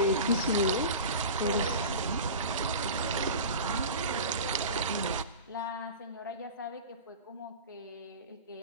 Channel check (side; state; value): both; inverted; correlation -0.32